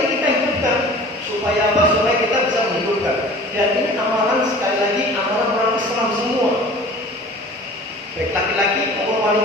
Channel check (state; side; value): normal; both; correlation 0.43